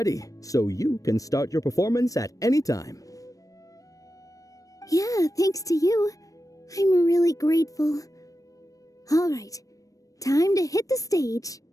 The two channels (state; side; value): late; right; 0.16 ms